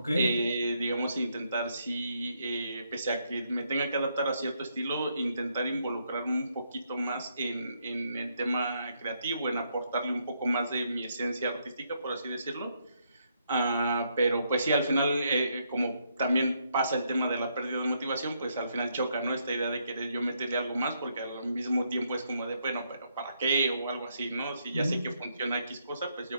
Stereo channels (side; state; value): both; inverted; correlation -0.75